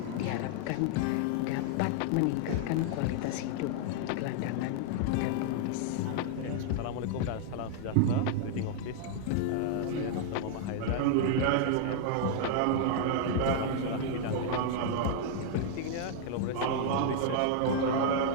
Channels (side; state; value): both; different; correlation -0.01